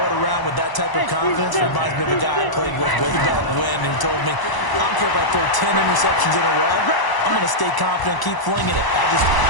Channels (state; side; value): late; right; 1.0 ms